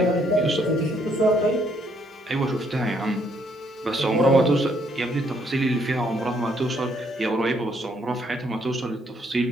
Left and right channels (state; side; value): normal; both; correlation 0.70